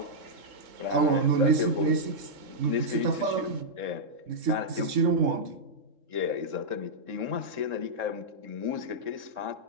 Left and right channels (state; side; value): late; left; 3.7 ms